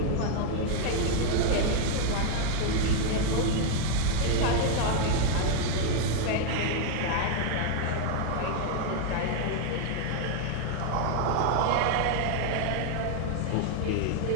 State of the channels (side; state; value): both; different; correlation 0.00